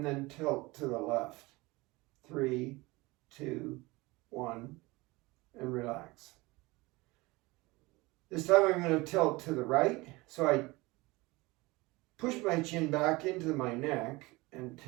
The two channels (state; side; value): quieter; left; 22.5 dB